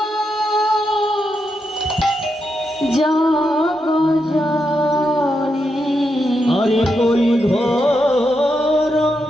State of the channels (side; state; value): both; normal; correlation 0.84